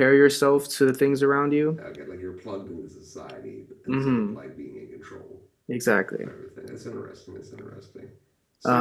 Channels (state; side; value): identical; both; correlation 1.00